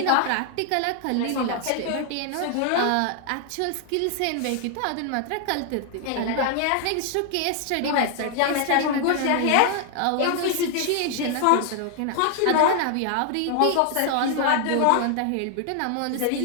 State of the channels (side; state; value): both; different; correlation 0.00